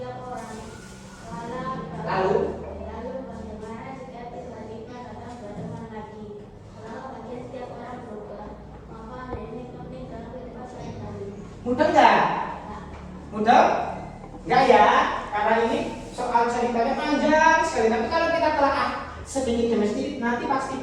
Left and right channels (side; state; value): both; identical; correlation 1.00